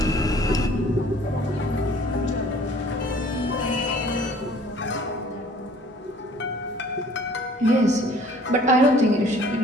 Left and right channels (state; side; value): normal; both; correlation 0.53